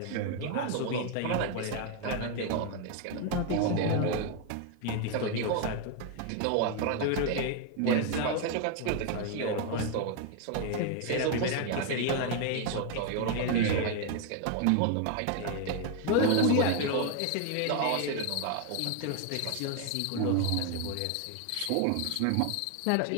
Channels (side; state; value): both; different; correlation 0.01